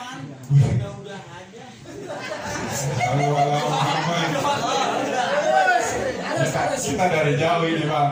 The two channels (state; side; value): identical; both; correlation 1.00